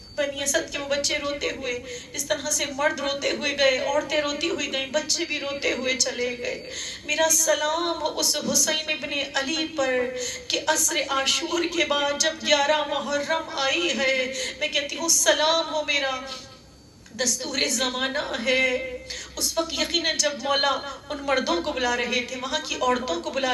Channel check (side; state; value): both; identical; correlation 1.00